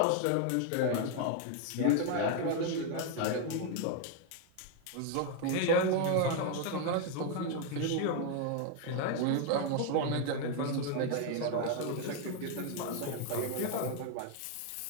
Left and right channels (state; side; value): different; both; correlation 0.01